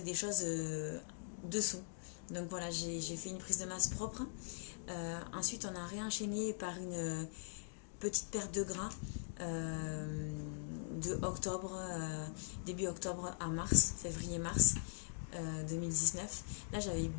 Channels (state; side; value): silent; right; digital silence